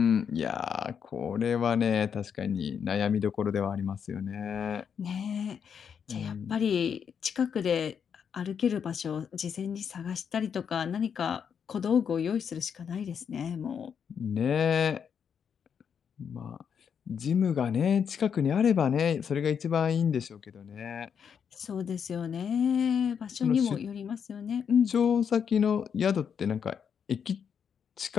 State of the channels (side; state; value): right; quieter; 7.3 dB